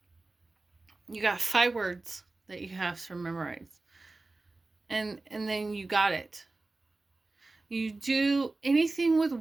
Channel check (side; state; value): left; quieter; 3.3 dB